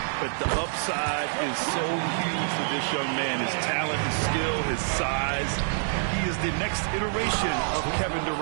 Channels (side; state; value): left; silent; digital silence